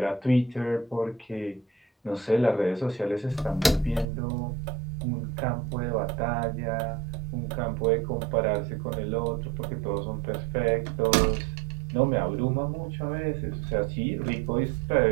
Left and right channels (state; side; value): drops out; left; at 4.0 s